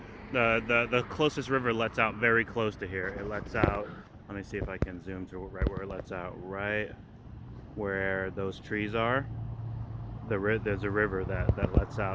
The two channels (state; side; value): identical; both; correlation 1.00